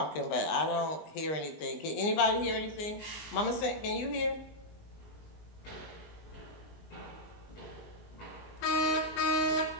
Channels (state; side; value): late; right; 20 ms